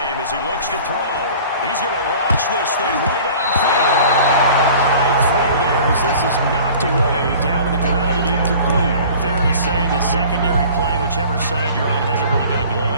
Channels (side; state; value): both; inverted; correlation -0.45